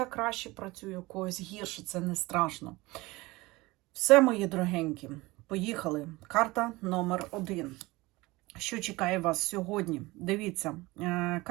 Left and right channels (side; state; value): left; quieter; 21.3 dB